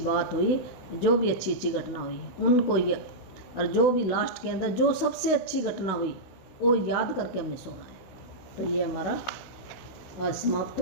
हुई, जो भी अच्छी अच्छी घटना हुई उनको और जो भी लास्ट के अंदर जो सबसे अच्छी घटना हुई वो याद करके हमने सोना है। तो ये हमारा आज समाप्त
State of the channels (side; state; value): right; late; 16 ms